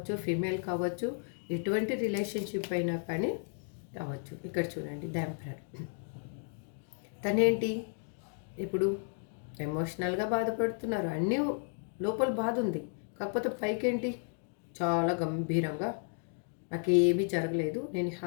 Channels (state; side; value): silent; right; 55 dB below the other